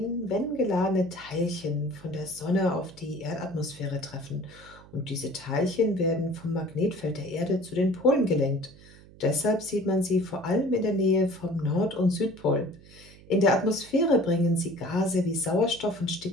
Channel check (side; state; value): right; noise; hum, 22 dB below the sound